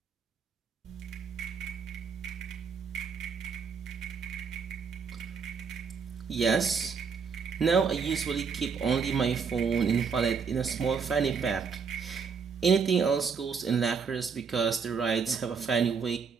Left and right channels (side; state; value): left; quieter; 5.9 dB